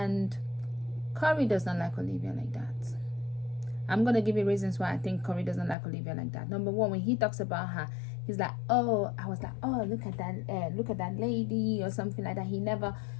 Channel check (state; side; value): drops out; right; at 5.8 s